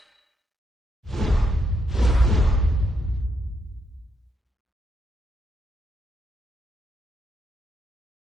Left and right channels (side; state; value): both; normal; correlation 0.79